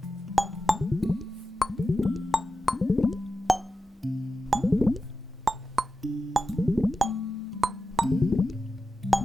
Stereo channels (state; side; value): normal; both; correlation 0.92